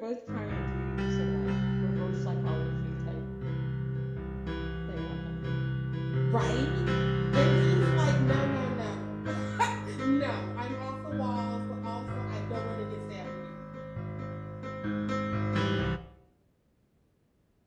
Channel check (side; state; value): both; identical; correlation 1.00